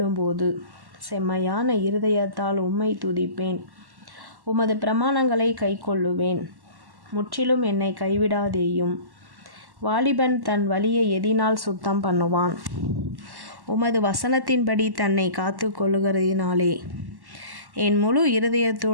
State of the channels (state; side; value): late; left; 1.1 ms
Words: செம்மையான இருதயத்தால் உம்மை துதிப்பேன். உமது பிரமாணங்களை கைக்கொள்ளுவேன். முற்றிலும் என்னை கைவிடாதேயும். வாலிபன் தன் வழியை எதினால் சுத்தம் பண்ணுவான்? உமது வசனத்தின்படி தன்னை காத்து கொள்ளுகிறதினாலே. என் முழு